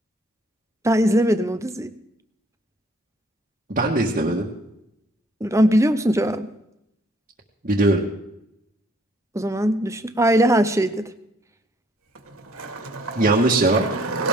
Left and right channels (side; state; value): both; normal; correlation 0.63